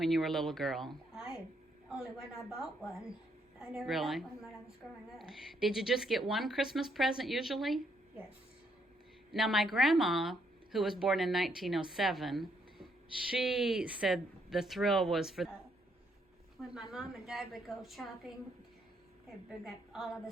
you were a little girl? Only when I bought one. I never Really? got one when I was growing up. Did you just get one Christmas present usually? Yes. Now, my grandma, who was born in 1907, she said the thrill was for... When my mom and dad would go shopping, they'd bring up all of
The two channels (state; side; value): normal; both; correlation 0.73